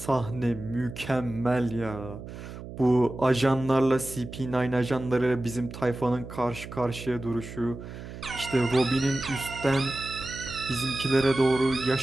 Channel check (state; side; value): noise; right; hum, 12 dB below the sound